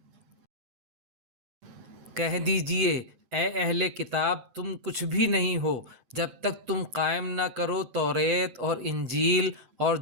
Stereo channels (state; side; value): late; left; 7.8 ms